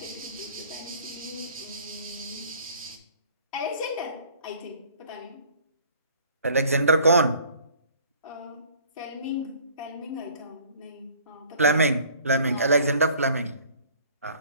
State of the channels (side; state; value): both; inverted; correlation -0.53